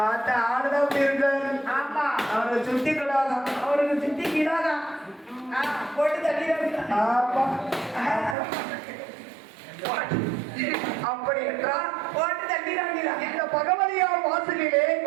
ஆடுதான் அப்படி இருக்காரு. ஆமா, அவருக்கு சுத்தி கிடாதான். அவருக்கு சுத்தி கிடாதான். போட்டு தள்ளி. ஆமா, அப்படி என்றால் போட்டு தள்ளி. இந்த பகவதியார் வாசலிலே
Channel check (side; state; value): left; drops out; at 8.3 s